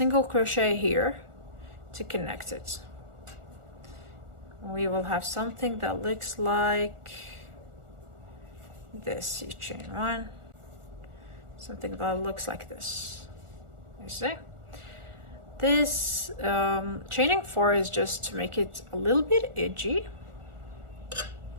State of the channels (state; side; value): late; left; 1.4 ms